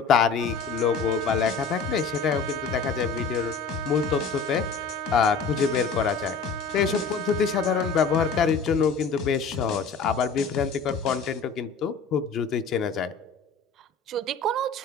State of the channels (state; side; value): quieter; right; 4.7 dB